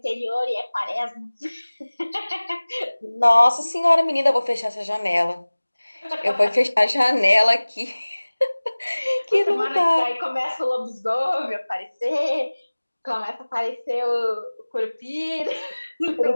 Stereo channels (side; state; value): both; inverted; correlation -1.00